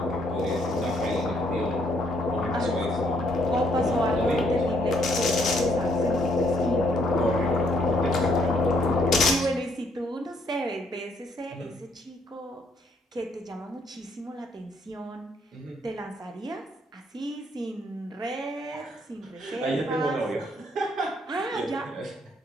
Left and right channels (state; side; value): normal; both; correlation 0.69